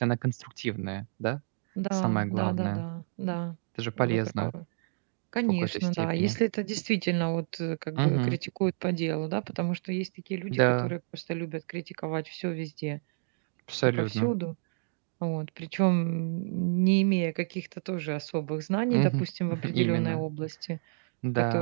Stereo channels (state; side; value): silent; left; digital silence